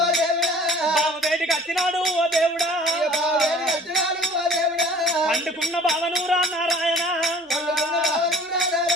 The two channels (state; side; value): normal; both; correlation 0.49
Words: బావ వేటికి వచ్చినాడు ఓ దేవుడా పండుకున్న బావను రా నారాయణ